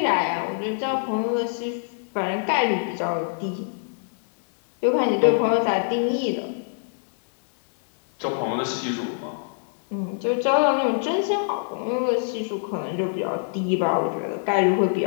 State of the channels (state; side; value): silent; right; digital silence